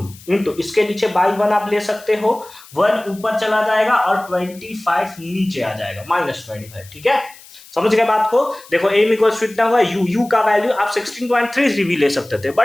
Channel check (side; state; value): left; noise; hiss, 22 dB below the sound